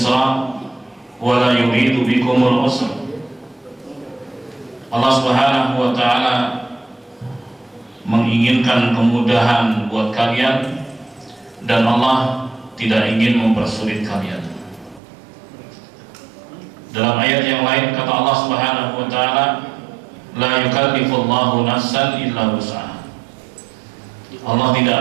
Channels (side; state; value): left; drops out; at 15.0 s